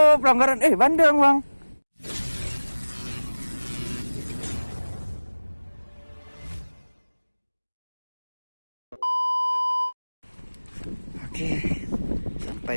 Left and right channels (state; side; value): inverted; both; correlation -1.00